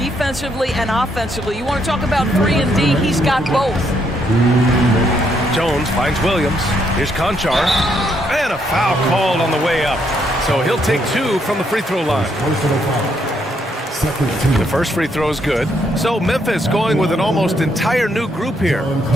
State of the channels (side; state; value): both; normal; correlation 0.74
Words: and offensively. You want to talk about 3 and D, he's got both. Jones finds Williams. Here's Conchar. And a foul called on the way up. So he'll take 2 from the free throw line. The first free throw is good. So Memphis going with an almost entire new group here.